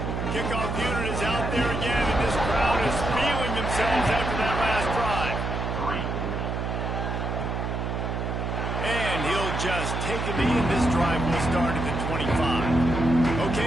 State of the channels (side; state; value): right; noise; hum, 2 dB below the sound